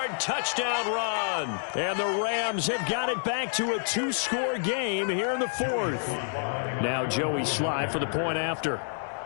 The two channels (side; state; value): right; silent; digital silence